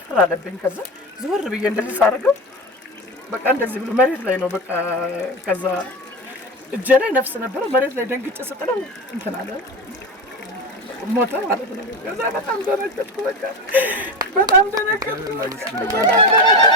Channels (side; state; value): both; normal; correlation 0.22